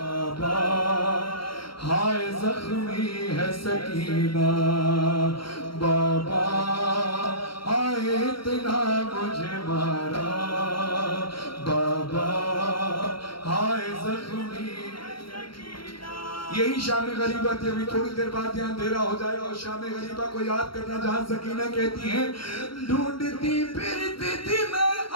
ہائے زخمی ہے سکینہ. بابا ہائے اتنا مجھے مارا. بابا ہائے زخمی. یہی شام غریبت ہے. ابھی تھوڑی دیر بعد یہاں اندھیرا ہو جائے گا اور شام غریبہ کو یاد کرنا جہاں سکینہ کہتی ہیں ڈھونڈتی پھرتی تھی میں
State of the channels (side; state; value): right; late; 0.73 ms